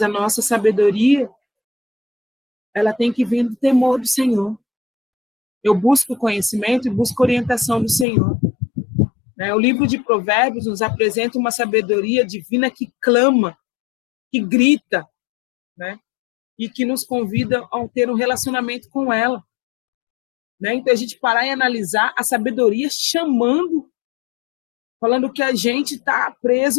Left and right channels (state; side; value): drops out; right; at 8.1 s